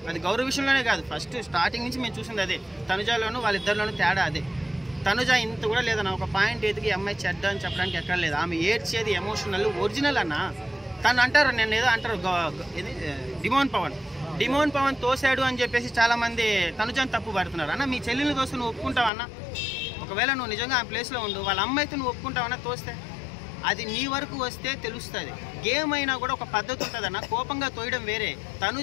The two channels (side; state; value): right; drops out; at 19.1 s